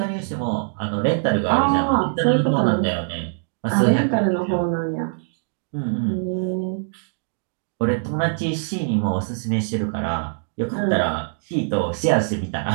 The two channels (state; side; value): silent; left; digital silence